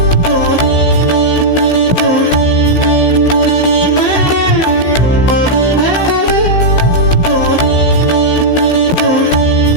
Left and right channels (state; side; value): late; right; 16 ms